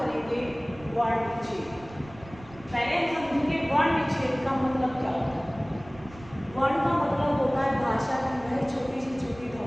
वर्ण विच्छेद। पहले हम समझेंगे वर्ण विच्छेद का मतलब क्या होता है। वर्ण का मतलब होता है भाषा की वह छोटी से छोटी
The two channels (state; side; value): noise; right; rumble, 20 dB below the sound